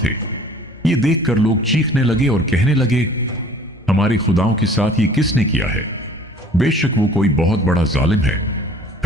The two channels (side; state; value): both; normal; correlation 0.51